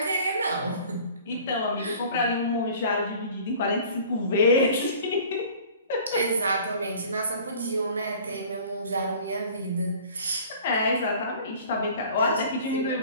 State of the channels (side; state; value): both; inverted; correlation -0.47